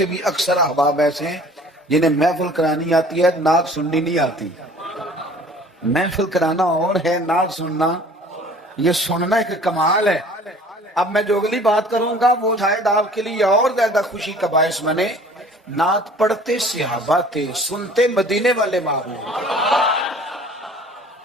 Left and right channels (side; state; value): both; normal; correlation 0.49